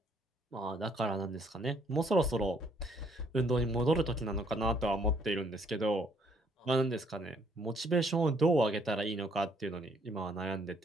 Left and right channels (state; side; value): normal; both; correlation 0.66